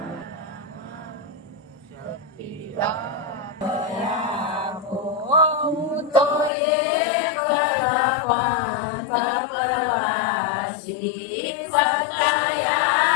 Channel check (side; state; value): right; drops out; at 6.5 s